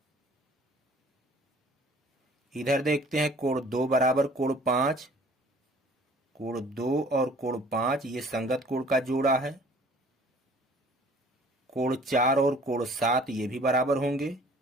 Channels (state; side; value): normal; both; correlation 0.53